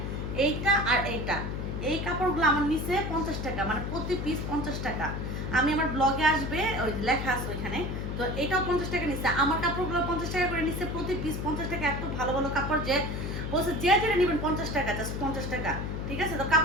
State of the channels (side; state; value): left; noise; hum, 4 dB below the sound